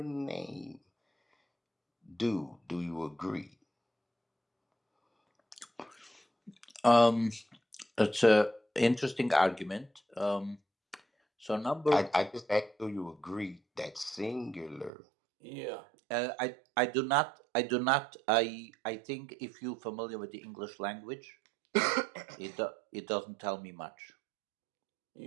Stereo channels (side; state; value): left; drops out; at 14.9 s